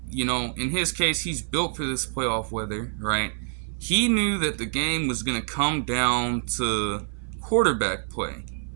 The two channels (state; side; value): silent; left; 56 dB below the other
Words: in his case, he's built for this playoff weather, right? He knew that the game was going to come down to quarterback play.